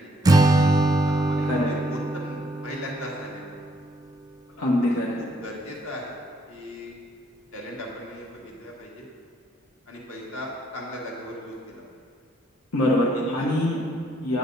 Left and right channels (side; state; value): both; normal; correlation 0.70